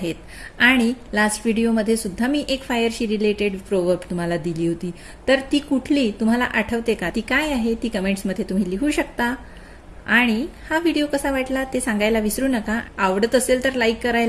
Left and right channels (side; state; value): both; identical; correlation 1.00